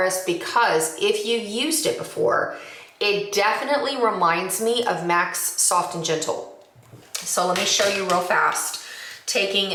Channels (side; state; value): both; identical; correlation 1.00